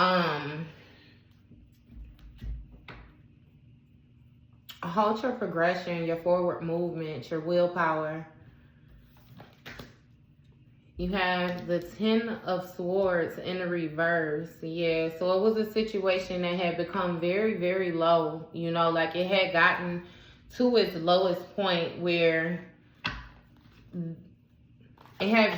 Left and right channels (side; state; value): both; identical; correlation 1.00